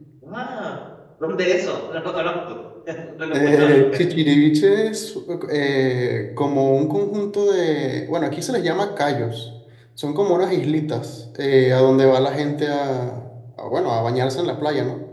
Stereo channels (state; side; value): identical; both; correlation 1.00